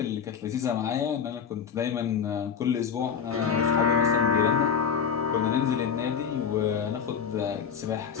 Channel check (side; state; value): right; quieter; 7.0 dB